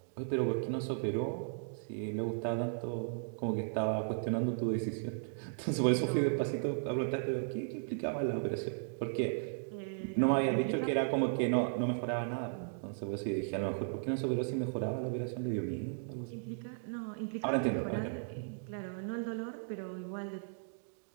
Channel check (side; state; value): left; silent; digital silence